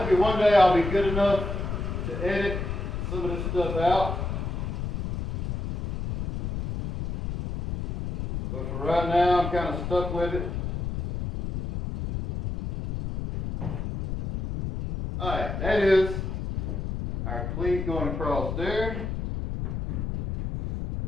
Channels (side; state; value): left; noise; rumble, 4 dB below the sound